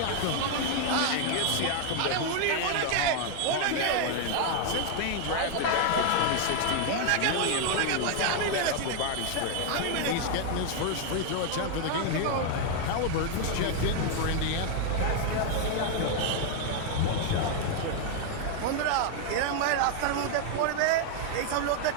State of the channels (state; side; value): different; both; correlation 0.00